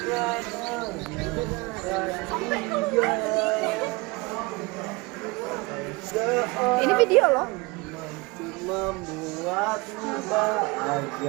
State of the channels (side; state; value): left; quieter; 25.0 dB